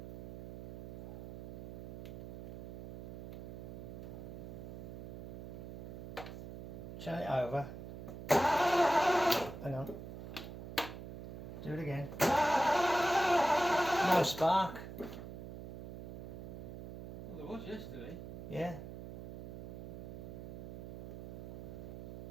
it over. Hang on. Do it again. No spark. Well, there was yesterday. Yeah.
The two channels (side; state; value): right; noise; hum, 10 dB below the sound